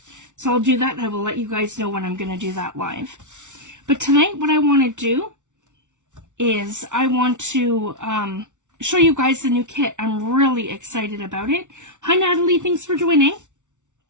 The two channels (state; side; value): late; left; 0.86 ms